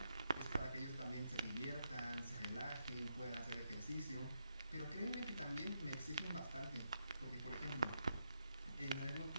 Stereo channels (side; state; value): both; inverted; correlation -0.82